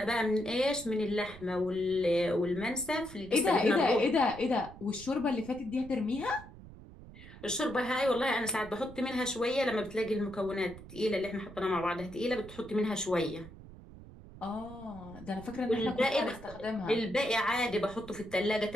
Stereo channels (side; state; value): right; noise; rumble, 17 dB below the sound